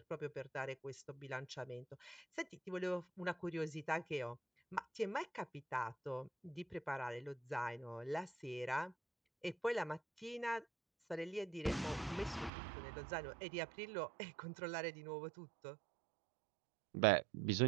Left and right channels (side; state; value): left; drops out; at 12.5 s